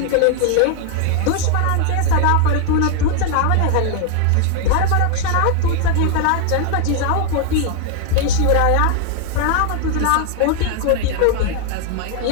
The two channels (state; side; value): different; both; correlation 0.00